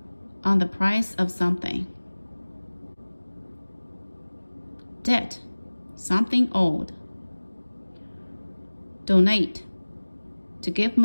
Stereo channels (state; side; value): inverted; both; correlation -1.00